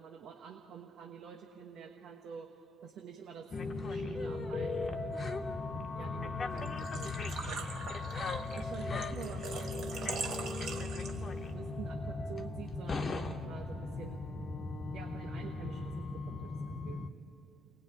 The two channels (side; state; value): both; normal; correlation 0.76